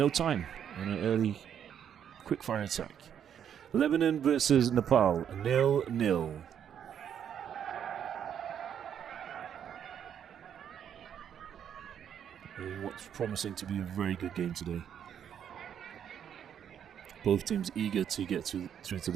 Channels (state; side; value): quieter; left; 8.9 dB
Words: time on an early quick-fire attack. Lebanon versus Nepal, 0-0. What's promising to be a very good game today. Both teams eager to get through to